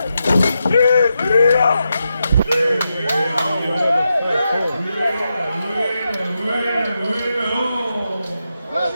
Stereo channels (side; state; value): both; inverted; correlation -0.87